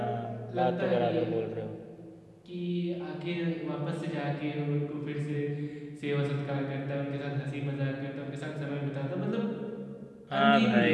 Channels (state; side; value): identical; both; correlation 1.00